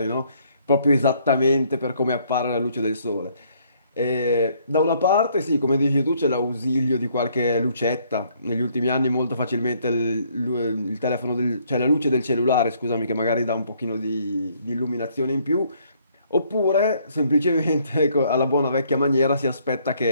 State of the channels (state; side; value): inverted; both; correlation -0.66